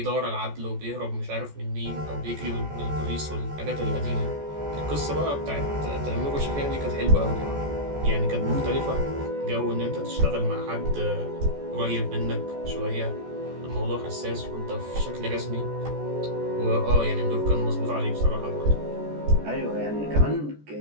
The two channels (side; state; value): left; late; 14 ms